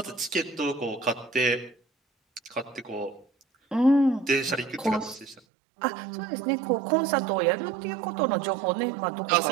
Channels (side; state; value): left; drops out; at 5.4 s